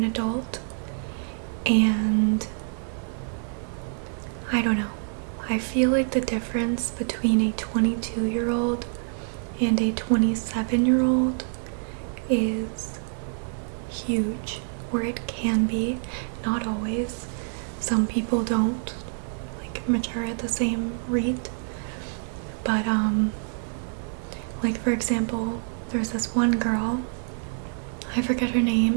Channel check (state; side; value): silent; left; digital silence